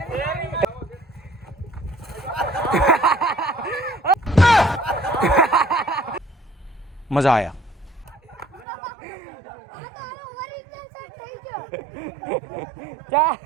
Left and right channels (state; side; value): drops out; left; at 8.7 s